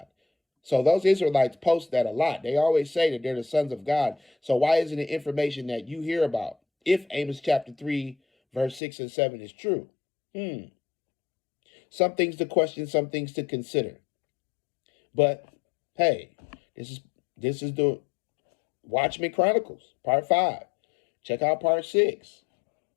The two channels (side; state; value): right; drops out; at 8.8 s